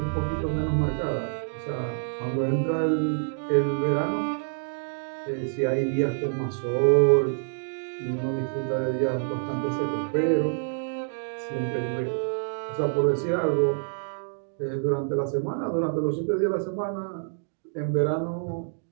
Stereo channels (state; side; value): silent; left; digital silence